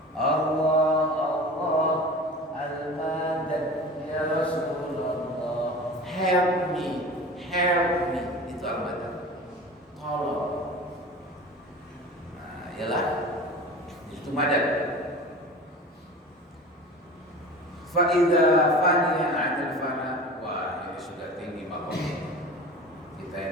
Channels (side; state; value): both; normal; correlation 0.36